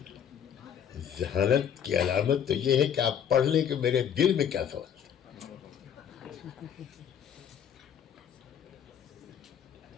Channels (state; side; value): quieter; right; 8.6 dB